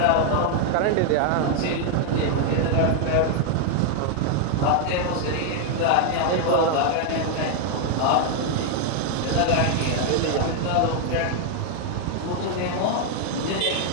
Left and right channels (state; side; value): different; both; correlation 0.00